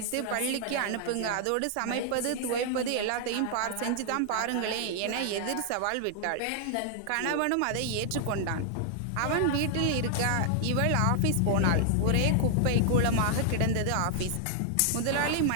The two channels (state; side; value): different; both; correlation -0.01